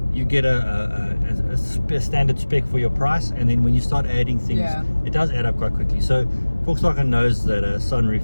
you get a standard spec for your price, and then when you start adding things, it does add up quite quickly. So Volkswagen knows that a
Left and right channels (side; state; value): both; inverted; correlation -1.00